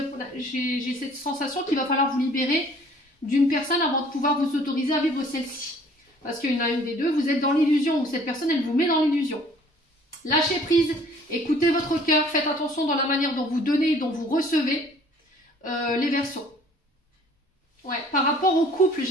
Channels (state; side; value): normal; both; correlation 0.55